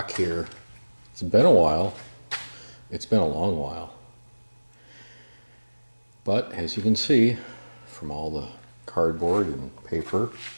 here. It's been a while. It's been a long while. But as you can see from all the cardboard and paper,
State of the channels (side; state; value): both; inverted; correlation -1.00